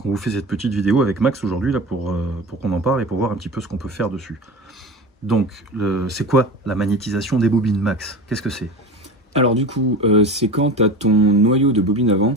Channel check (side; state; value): both; normal; correlation 0.31